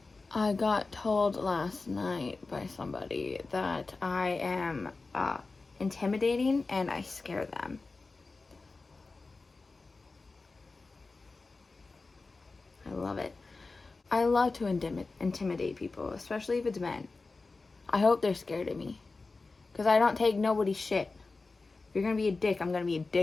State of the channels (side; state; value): right; quieter; 3.7 dB